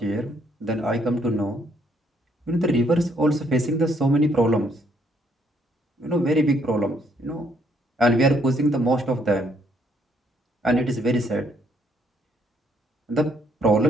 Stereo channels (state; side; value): normal; both; correlation 0.70